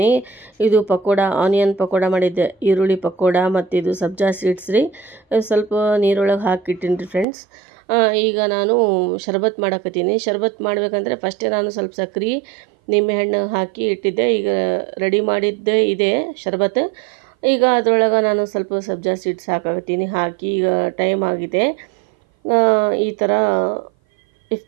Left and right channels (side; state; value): left; drops out; at 7.2 s